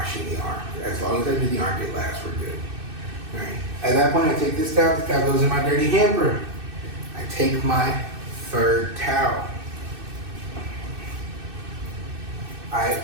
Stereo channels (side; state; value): left; late; 2.6 ms